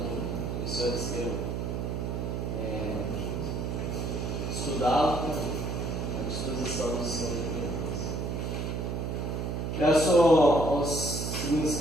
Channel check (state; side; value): noise; right; hum, 2 dB below the sound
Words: os senhores queiram estudá-lo, à disposição dos senhores. Peço ao segundo